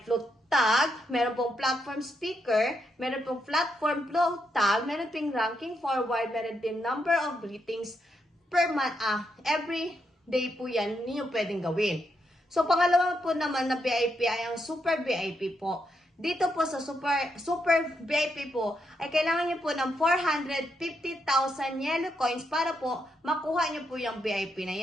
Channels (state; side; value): normal; both; correlation 0.80